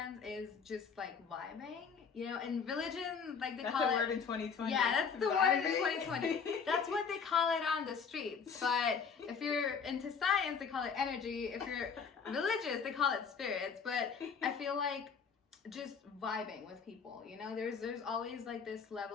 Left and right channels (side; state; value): right; quieter; 6.1 dB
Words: is just, like, vibing. You know, in religion, like, they call it... That's the word in 2020. Yeah, that's the word in 2020. That's what they call it on the streets. But if you're into science, they call it energy. If you're religious, they call it spirits. But I feel like just vibing with people, you know? There's always, like, this